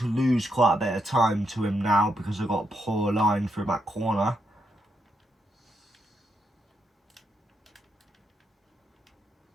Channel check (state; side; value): normal; both; correlation 0.81